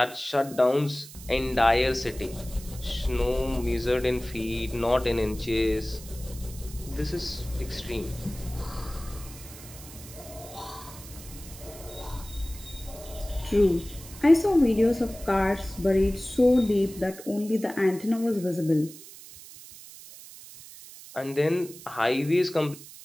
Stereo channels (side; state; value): right; noise; hiss, 16 dB below the sound